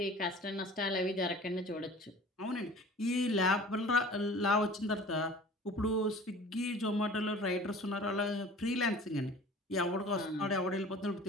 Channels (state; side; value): normal; both; correlation 0.44